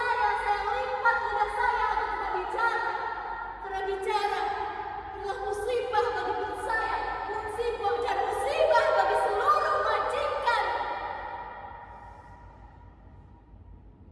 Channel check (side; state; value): both; identical; correlation 1.00